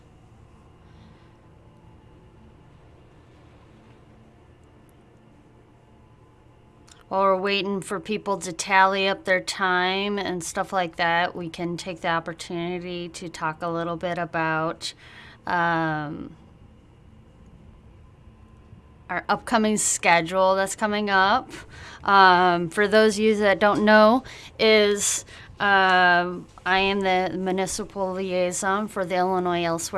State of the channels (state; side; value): identical; both; correlation 1.00